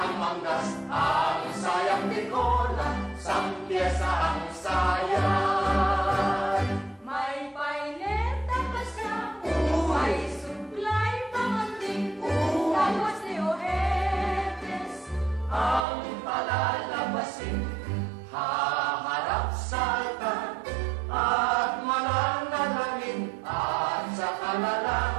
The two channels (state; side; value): drops out; left; at 15.9 s